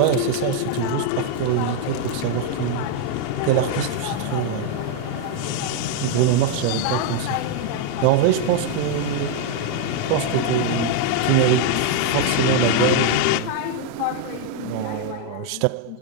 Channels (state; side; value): different; both; correlation 0.01